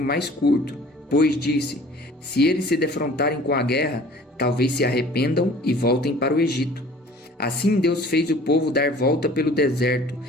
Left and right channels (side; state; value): both; normal; correlation 0.49